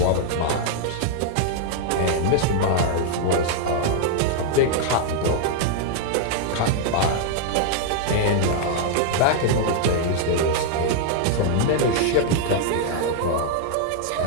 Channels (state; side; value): different; both; correlation 0.00